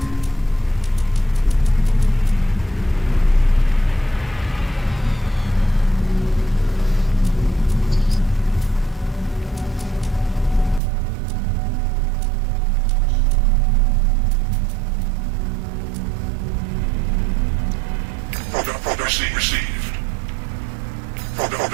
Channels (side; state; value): left; drops out; at 10.8 s